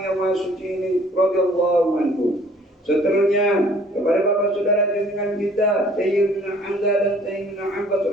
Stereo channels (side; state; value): both; normal; correlation 0.56